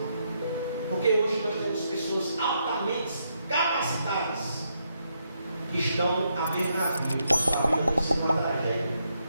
Porque hoje nós temos pessoas altamente capacitadas que estão à beira da vida. Sua vida tem que ser uma tragédia.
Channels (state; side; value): inverted; both; correlation -0.79